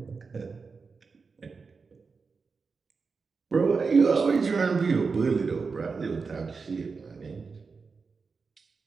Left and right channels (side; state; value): left; quieter; 4.8 dB